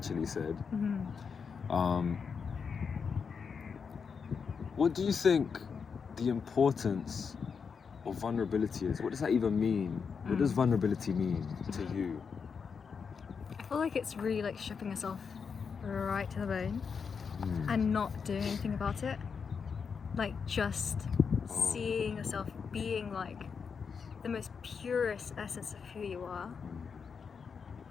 said. What do you think the importance of vulnerability is? What does that even mean? What does vulnerability mean to you? I feel like it's really like stripping yourself right to the bone and not doing anything about it. Like just seeing yourself being like the most purest essence of who you are,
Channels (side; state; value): right; quieter; 6.0 dB